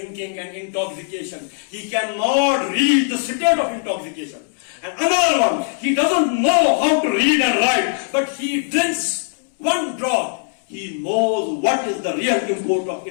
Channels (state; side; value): silent; right; 66 dB below the other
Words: and intoxication, he cannot read the state of intoxication. And another one, he doesn't know how to read and write, but he drinks one drop. He knows what is the real import of